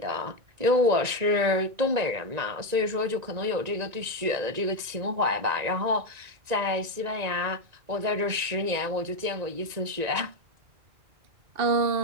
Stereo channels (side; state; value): left; late; 1.9 ms